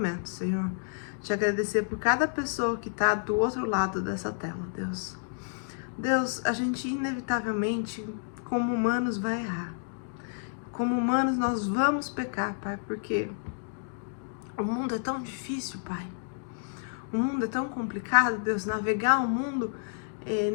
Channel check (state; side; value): silent; right; digital silence